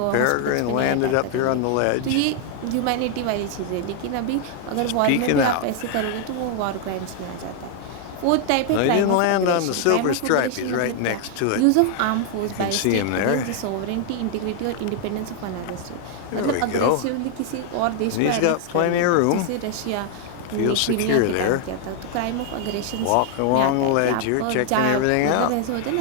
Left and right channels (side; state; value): both; different; correlation 0.00